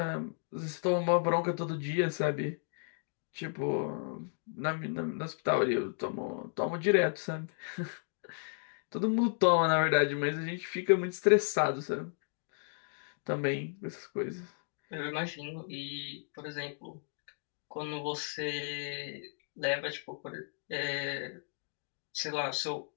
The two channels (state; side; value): silent; right; digital silence